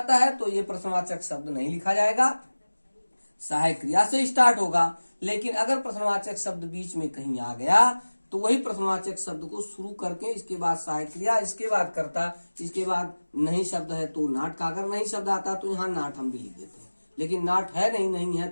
है तो ये प्रश्नवाचक शब्द नहीं लिखा जाएगा, सहायक क्रिया से स्टार्ट होगा। लेकिन अगर प्रश्नवाचक शब्द बीच में कहीं आ गया तो वही प्रश्नवाचक शब्द को शुरू करके इसके बाद सहायक क्रिया, इसके बाद कर्ता, इसके बाद नहीं शब्द है तो नाट का, अगर नहीं शब्द आता तो यहाँ नाट हम भी लिख देते हैं, लेकिन नाट है नहीं है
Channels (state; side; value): inverted; both; correlation -1.00